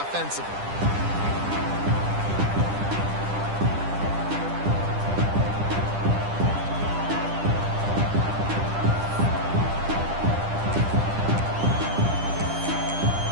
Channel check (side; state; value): left; late; 10 ms